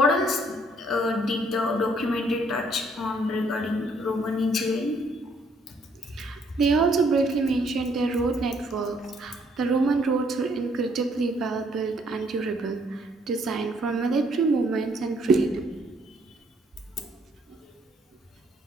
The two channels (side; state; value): both; normal; correlation 0.67